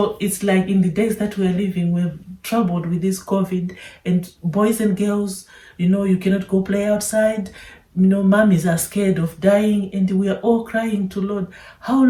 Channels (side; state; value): both; identical; correlation 1.00